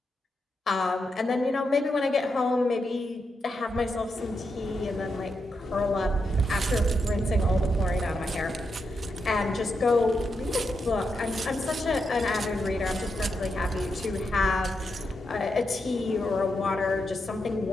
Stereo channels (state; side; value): normal; both; correlation 0.85